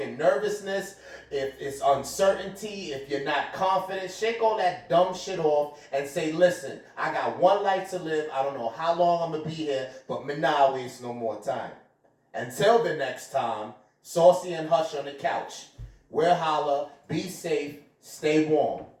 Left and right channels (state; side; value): identical; both; correlation 1.00